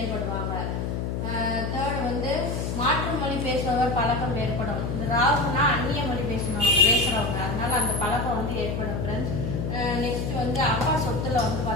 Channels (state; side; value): noise; left; hum, 2 dB below the sound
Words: தேர்ட் வந்து மாற்று மொழி பேசுபவர் பழக்கம் ஏற்படும். இந்த ராகுனா அந்நிய மொழி பேசுறவங்க, அதனால அந்த பழக்கம் வந்து ஏற்படும் ஃப்ரெண்ட்ஸ். நெக்ஸ்ட் வந்து அப்பா சொத்துல வந்து